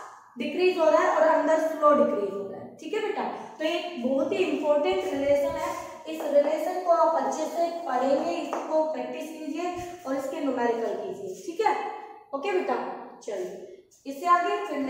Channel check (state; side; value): identical; both; correlation 1.00